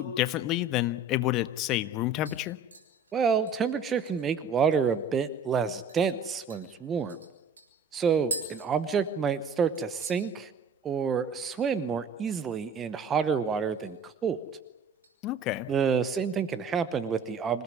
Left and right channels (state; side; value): quieter; left; 3.0 dB